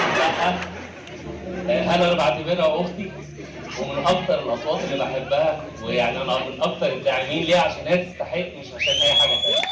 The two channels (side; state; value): both; identical; correlation 1.00